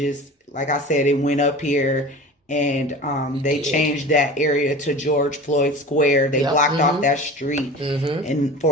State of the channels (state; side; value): normal; both; correlation 0.36